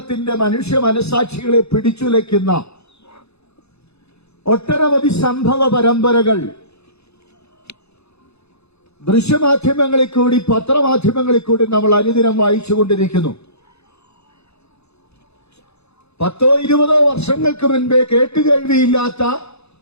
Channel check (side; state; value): right; late; 0.79 ms